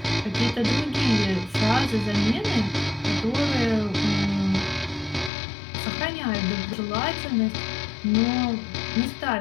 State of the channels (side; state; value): right; drops out; at 5.3 s